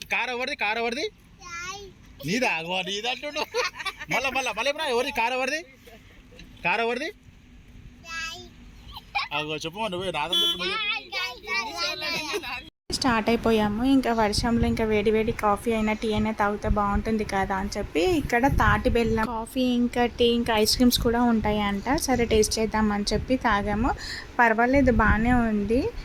స్టార్ట్ అయిపోయాము. ఇంకా వర్షంలో ఇంకా వేడి వేడి కాఫీ అయినా టీ అయినా తాగితే బాగుంటుంది కదా అని చెప్పి ఇక్కడ తాటి బెల్లం కాఫీ ఇంకా టీ ఇంకా ఐస్ క్రీమ్స్ కూడా ఉంటాయి అంట. సరే టేస్ట్ చేద్దామని చెప్పి తాగాము. పర్వాలేదు, బాగానే ఉంది.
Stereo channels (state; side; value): identical; both; correlation 1.00